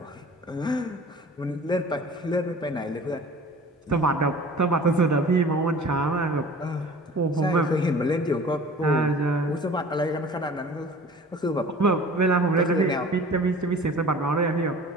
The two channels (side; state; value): both; normal; correlation 0.44